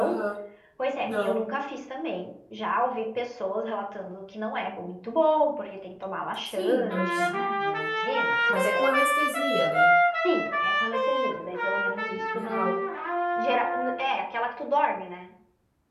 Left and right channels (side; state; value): both; identical; correlation 1.00